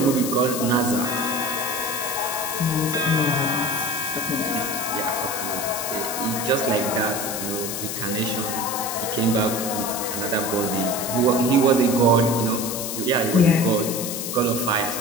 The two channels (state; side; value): noise; left; hiss, 4 dB below the sound